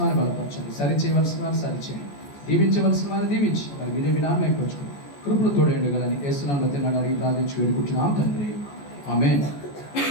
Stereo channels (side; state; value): right; late; 14 ms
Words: వారిని బలపరచండి, సరి చేయవలసిన వారిని సరి చేయండి, దీవించవలసిన వారిని దీవించి మరి మీరే మీ నామైపోవచ్చు. కృపలు తోడేండుగలని యేసునామములో అడిగి ప్రార్థించి వేడుకుంటున్నాం తండ్రి. ఆమేన్.